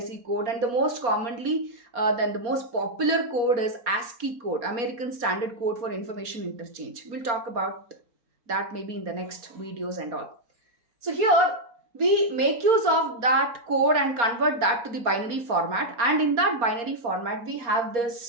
code, and the most commonly, the most popular code is ASCII code, American Standard Code for Information Interchange. We'll talk about that maybe in the next videos and all. So here, we make use of that code and convert that to the binary format. And in that binary format, we have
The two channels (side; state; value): left; late; 4.3 ms